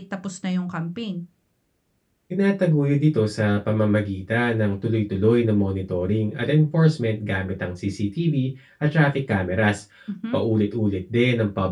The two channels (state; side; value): identical; both; correlation 1.00